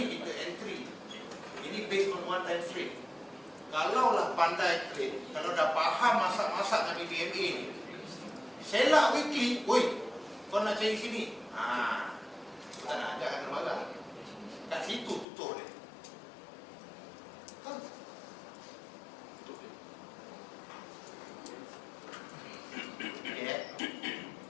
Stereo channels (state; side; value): drops out; right; at 15.2 s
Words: kita entry. Ini based on one time frame. Kalaulah pandai trade, kalau dah faham masak-masak dengan BBMA ni, selak weekly, oi, kau nak cari sini. Tak nak ajak akan marah. Kat situ tutup dia. Tutup dia. Okay.